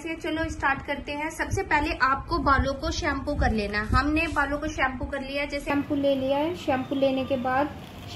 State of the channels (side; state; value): both; identical; correlation 1.00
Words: है, चलो स्टार्ट करते हैं। सबसे पहले आपको बालों को शैम्पू कर लेना है। हमने बालों को शैम्पू कर लिया, जैसे शैम्पू ले लिया है। शैम्पू लेने के बाद